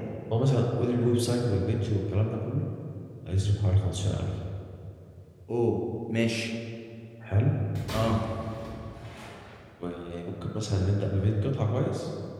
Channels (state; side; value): identical; both; correlation 1.00